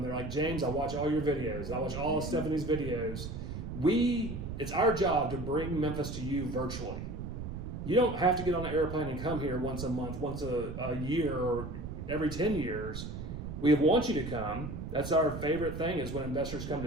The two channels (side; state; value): right; noise; rumble, 7 dB below the sound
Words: They're like, James, I watch all your videos. I watch all of Stephanie's videos. It's our job to bring Memphis to you virtually. You don't have to get on an airplane and come here once a month, once a year, or every 10 years. We want you to come. That's our favorite thing is when investors come